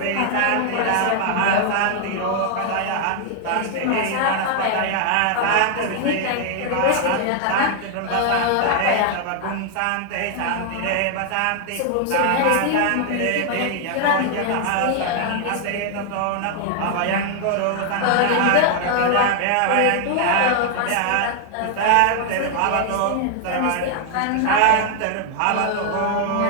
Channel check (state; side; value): different; both; correlation 0.00